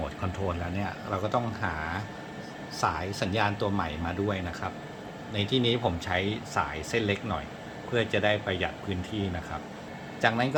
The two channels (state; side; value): identical; both; correlation 1.00